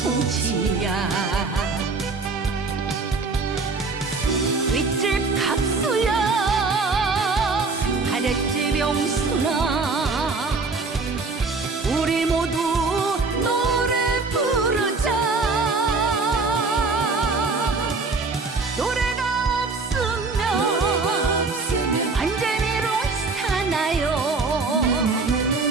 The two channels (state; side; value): quieter; left; 4.0 dB